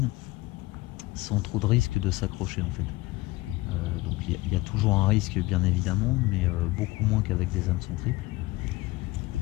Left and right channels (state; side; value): quieter; right; 20.1 dB